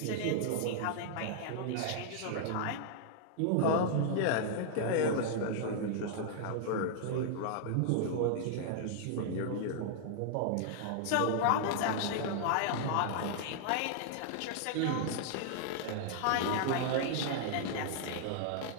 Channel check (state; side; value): different; both; correlation -0.01